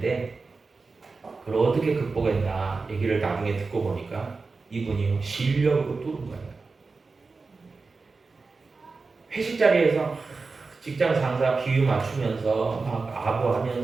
그걸 어떻게 극복했나 얘기를 나중에 듣고 보니까 이분이 실력으로 뚫은 거예요. 회식 자리에서 직장 상사 비유 맞추면서 막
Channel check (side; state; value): left; quieter; 4.1 dB